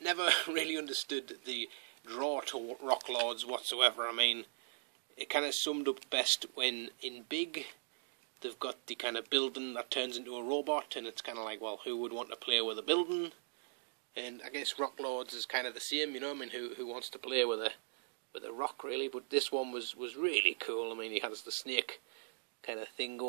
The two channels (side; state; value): left; silent; digital silence